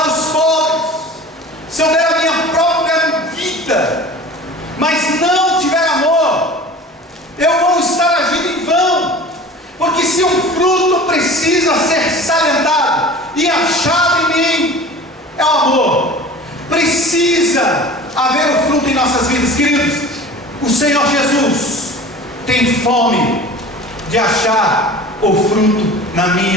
os pobres, se eu der a minha própria vida, mas não tiver amor, eu vou estar agindo em vão. Porque se um fruto precisa ser salientado e achado em mim, é o amor. Precisa haver o fruto em nossas vidas, queridos. O Senhor Jesus tem fome de achar o fruto na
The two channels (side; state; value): both; normal; correlation 0.40